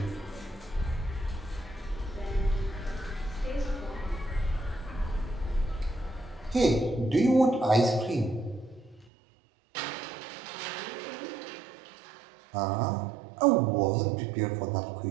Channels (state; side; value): drops out; left; at 9.1 s